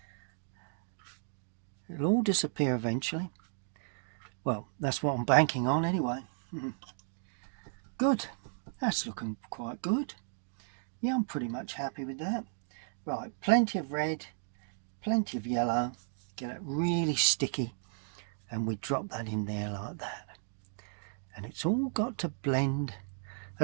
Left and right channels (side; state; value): left; silent; digital silence